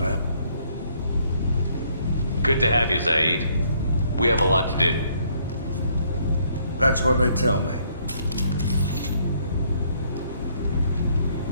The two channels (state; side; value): inverted; both; correlation -0.67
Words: Good to have you, Zaid. We have a lot to do. That's what they tell me.